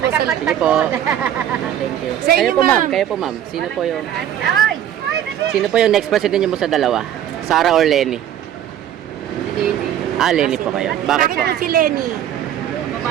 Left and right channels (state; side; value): quieter; left; 10.7 dB